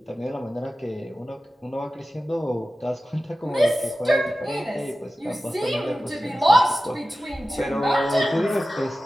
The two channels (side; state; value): both; normal; correlation 0.95